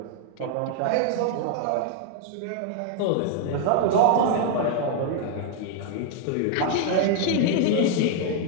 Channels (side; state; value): both; different; correlation 0.00